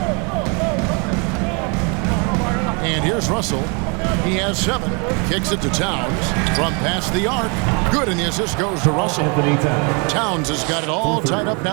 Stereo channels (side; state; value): left; quieter; 33.5 dB